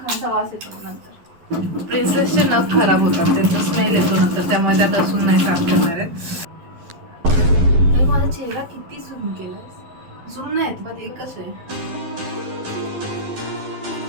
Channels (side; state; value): left; late; 12 ms